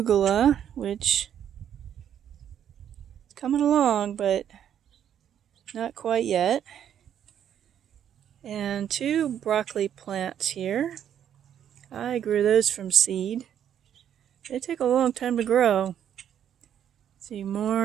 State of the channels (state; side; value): quieter; left; 9.6 dB